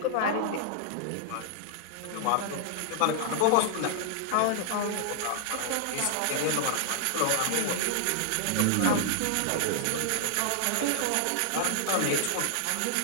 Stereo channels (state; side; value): different; both; correlation 0.00